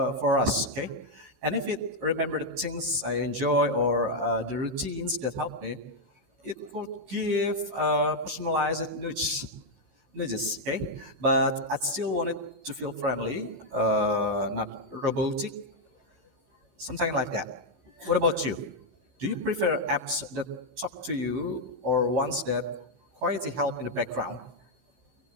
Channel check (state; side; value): late; left; 16 ms